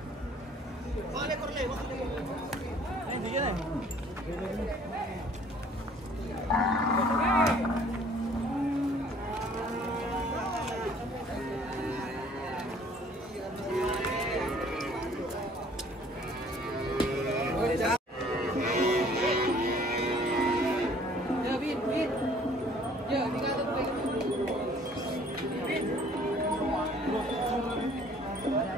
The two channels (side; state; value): both; normal; correlation 0.56